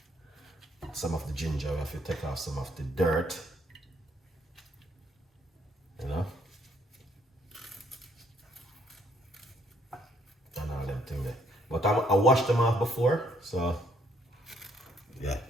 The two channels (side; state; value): both; normal; correlation 0.67